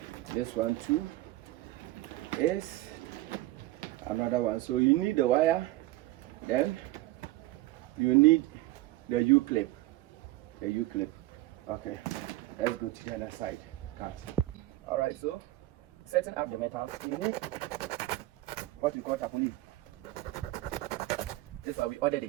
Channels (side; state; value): left; quieter; 17.7 dB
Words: this one too is another one. So you need the wire, then you need the U-clip. The U-clip. Okay, let's go to the other side. Cut. All right. So setting up the metal, you need what we call tapoli. This is why we ordered